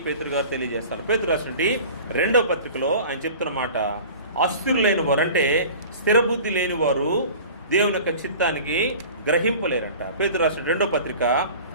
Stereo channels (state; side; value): inverted; both; correlation -0.41